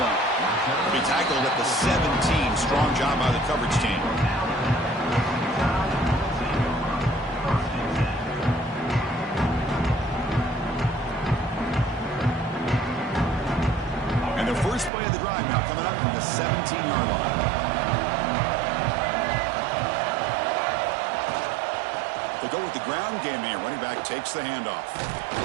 He'll be tackled at the 17. Strong job by the coverage team. First play of the drive now coming up from the 17-yard line. They'll go with the ground game here. Running back takes the handoff.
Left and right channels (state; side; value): drops out; left; at 14.9 s